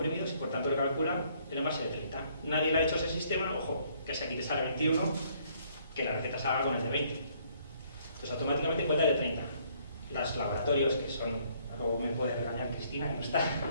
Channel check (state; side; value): inverted; both; correlation -0.65